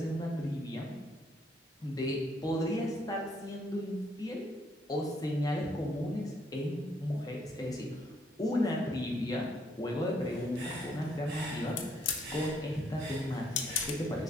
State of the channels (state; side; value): normal; both; correlation 0.69